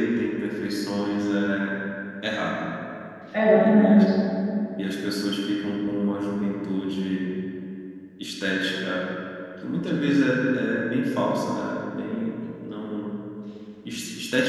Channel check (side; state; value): both; identical; correlation 1.00